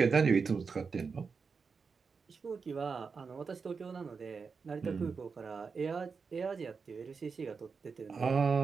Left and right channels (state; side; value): quieter; left; 5.2 dB